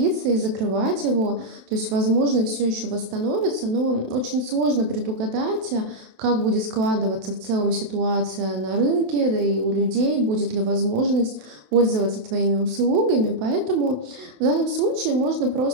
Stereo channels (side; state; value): left; late; 27 ms